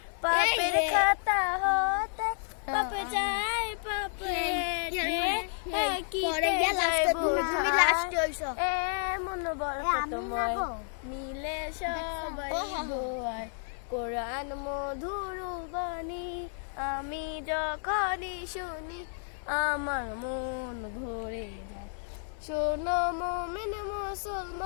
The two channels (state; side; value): silent; right; 57 dB below the other